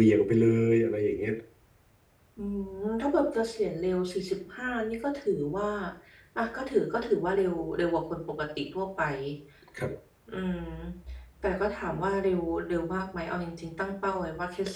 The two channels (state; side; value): identical; both; correlation 1.00